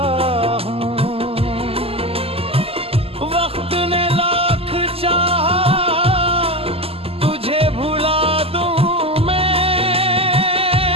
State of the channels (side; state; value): left; late; 0.28 ms